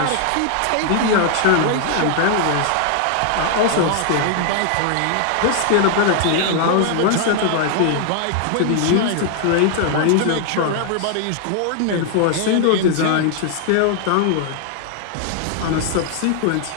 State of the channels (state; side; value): different; both; correlation 0.00